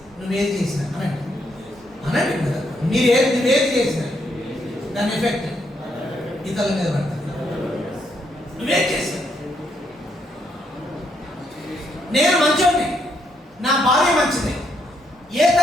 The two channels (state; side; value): normal; both; correlation 0.76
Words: నువ్వేది చేసినా అనండి కదా, నువ్వేది చేసినా దాని ఎఫెక్ట్ ఇతరుల మీద పడుతుంది. నువ్వేం చేసినా, నేను మంచోడిని, నా భార్య మంచిది, ఏ